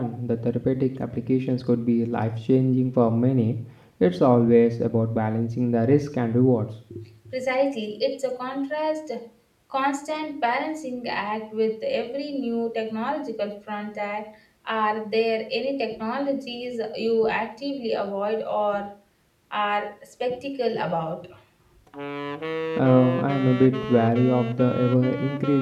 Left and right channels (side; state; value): both; identical; correlation 1.00